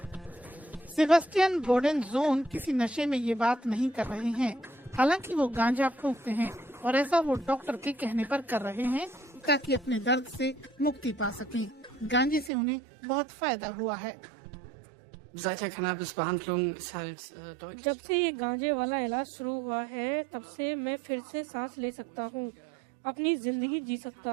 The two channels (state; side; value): drops out; left; at 12.5 s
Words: सेबेस्टियन बोडेनजोन किसी नशे में ये बात नहीं कर रहे हैं। हालांकि वो गांजा फूंकते हैं और ऐसा वो डॉक्टर के कहने पर कर रहे हैं ताकि अपने दर्द से मुक्ति पा सकें। गांजे से उन्हें बहुत फायदा हुआ है। जब से ये गांजे वाला इलाज शुरू हुआ है तब से मैं फिर से सांस ले सकता हूँ, अपनी जिंदगी जी सकता